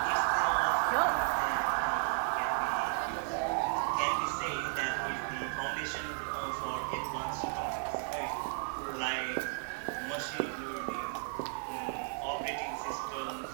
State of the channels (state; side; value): silent; left; digital silence